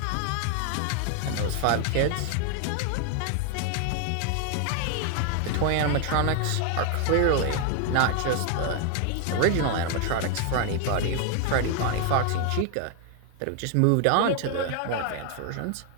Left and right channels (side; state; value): both; different; correlation 0.00